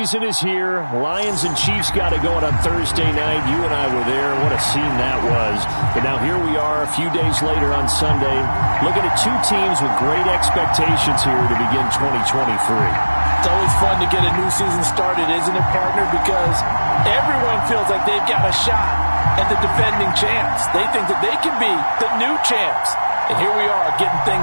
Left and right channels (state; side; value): inverted; both; correlation -1.00